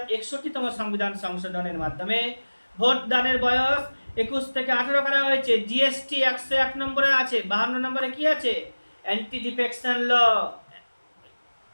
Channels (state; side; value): inverted; both; correlation -1.00